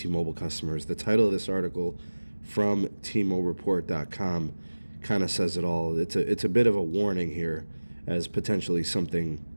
customers. The title of this article from tmoreport.com kind of says it all. It's a bit of a warning here as potentially something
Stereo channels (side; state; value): both; inverted; correlation -1.00